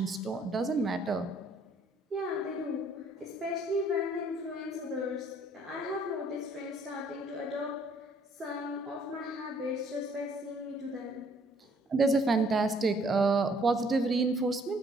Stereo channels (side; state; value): both; normal; correlation 0.62